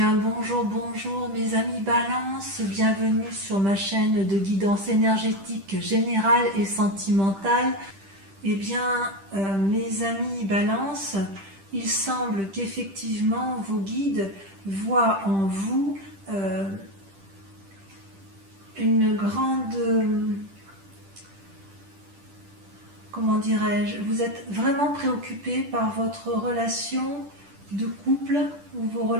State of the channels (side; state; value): left; late; 10 ms